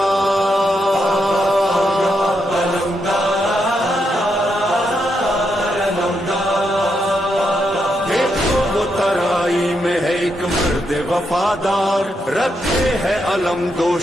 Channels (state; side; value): normal; both; correlation 0.81